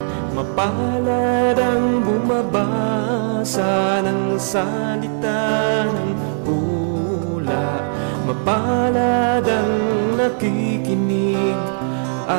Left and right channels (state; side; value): silent; left; digital silence